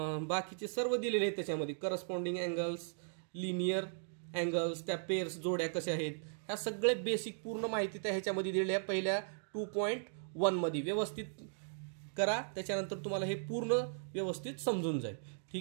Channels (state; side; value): silent; left; digital silence